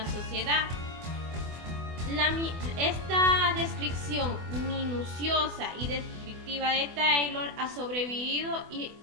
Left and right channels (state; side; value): late; left; 24 ms